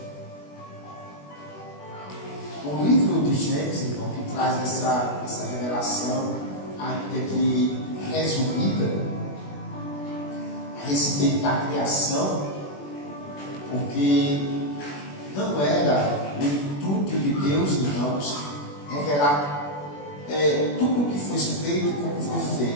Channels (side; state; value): right; late; 21 ms